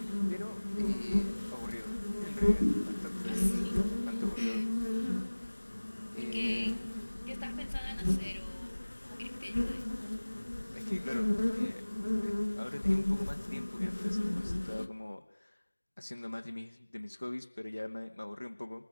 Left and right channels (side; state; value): both; inverted; correlation -1.00